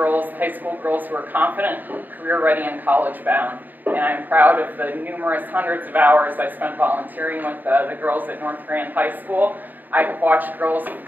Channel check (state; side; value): late; left; 0.087 ms